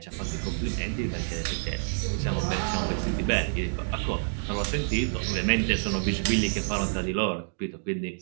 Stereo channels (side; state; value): left; silent; digital silence